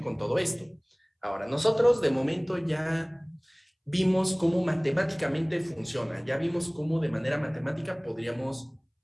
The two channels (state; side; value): identical; both; correlation 1.00